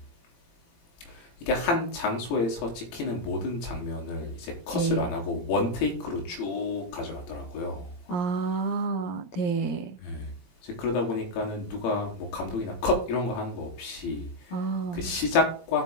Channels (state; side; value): late; right; 18 ms